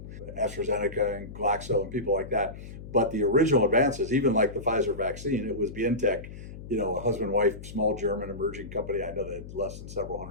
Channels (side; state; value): left; noise; hum, 13 dB below the sound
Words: AstraZeneca and Glaxo and people like that. But the original advances, even like the Pfizer vaccine, it was Vieth, a husband-wife, small German emerging company. I know that less than several